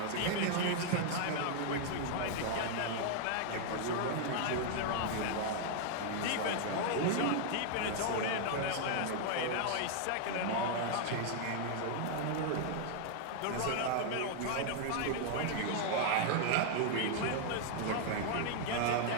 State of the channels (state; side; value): different; both; correlation 0.00